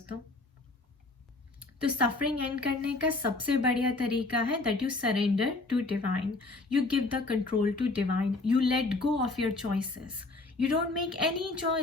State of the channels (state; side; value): quieter; right; 3.3 dB